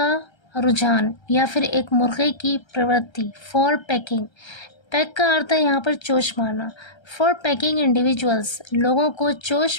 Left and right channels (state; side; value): late; right; 1.3 ms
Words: रुझान या फिर एक मुर्गे की प्रवृत्ति, फॉर पैकिंग, पैक का अर्थ है यहाँ पर चोच मारना, फॉर पैकिंग इंडिविजुअल्स, लोगों को